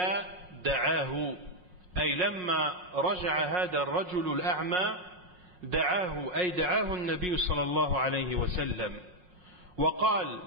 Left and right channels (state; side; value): late; left; 5.5 ms